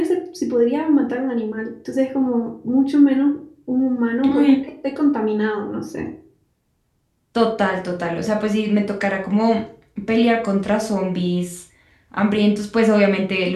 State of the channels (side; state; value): both; identical; correlation 1.00